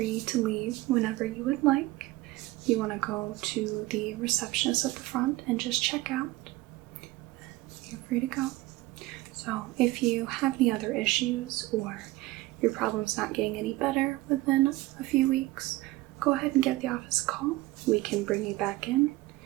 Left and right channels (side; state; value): left; quieter; 18.9 dB